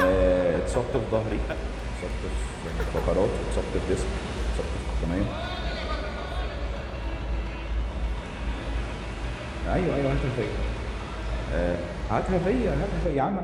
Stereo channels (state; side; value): identical; both; correlation 1.00